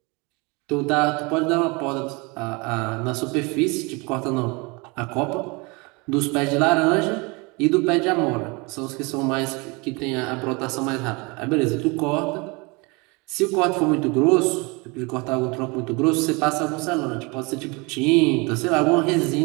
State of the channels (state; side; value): quieter; left; 27.6 dB